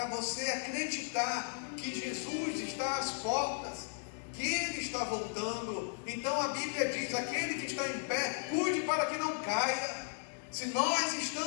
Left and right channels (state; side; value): silent; right; digital silence